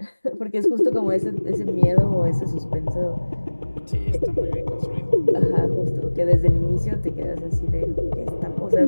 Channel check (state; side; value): inverted; both; correlation -1.00